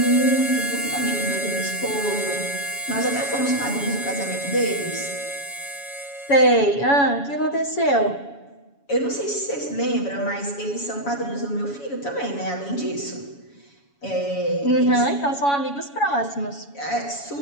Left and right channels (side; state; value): right; late; 7.1 ms